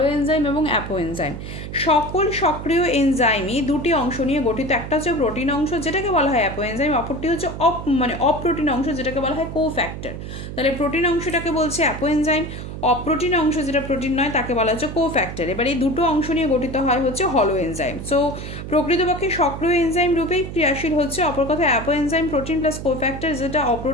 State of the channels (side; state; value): right; noise; hum, 9 dB below the sound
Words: এনজাইম এবং অ্যাপো এনজাইম। সকল সক্রিয় এনজাইমই দুটি অংশ নিয়ে গঠিত। একটা হচ্ছে প্রোটিন অংশ যেটাকে বলা হয় অ্যাপো এনজাইম, অপরটি হচ্ছে অপ্রোটিন অংশ যেটাকে বলা হয় কোফ্যাক্টর। তাহলে প্রোটিন অংশটাকে বলছে অ্যাপো এনজাইম, অপ্রোটিন অংশ যেটা প্রোটিন নয় তাকে বলা হচ্ছে কোফ্যাক্টর। এবার এই দুটো অংশ নিয়ে গঠিত হয় হচ্ছে হলো এনজাইম। সো প্রকৃতপক্ষে সক্রিয় এনজাইম রূপেই ক্রিয়াশীল হচ্ছে। অপর কথা apo enzyme protein plus cofactor, যেটা